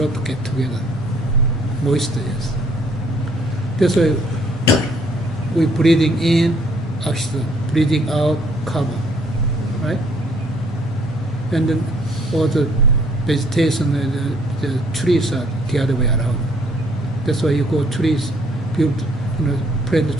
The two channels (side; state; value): both; normal; correlation 0.63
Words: get together. Moisture, yes. That's why we breathing in, oxygen, breathing out, carbon, right? And then all the vegetation, the trees are the other way around. That's why you go trees, build, plant the